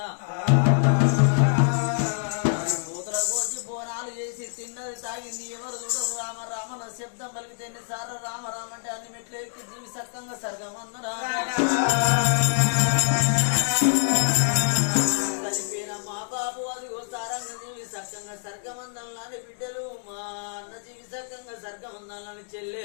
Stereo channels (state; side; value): silent; right; digital silence